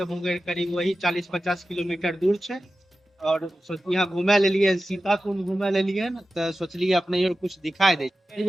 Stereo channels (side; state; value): both; normal; correlation 0.94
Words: मुंगेर करीब वही 40-50 किलोमीटर दूर है। और यहाँ घूमे ले लिए, सीता कुंड घूमे ले लिए न, तो सोचलिए अपने और कुछ दिखाई दे।